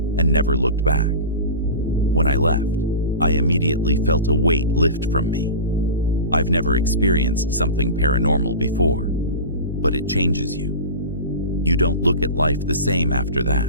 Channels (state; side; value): inverted; both; correlation -0.30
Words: and never looked back. When I left, I immediately felt a weight lift from me. I've never experienced something paranormal before, but it changes you. You don't look at life the same after